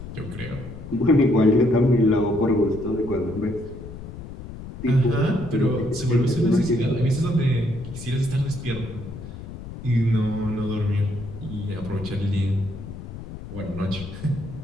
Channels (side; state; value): left; noise; rumble, 12 dB below the sound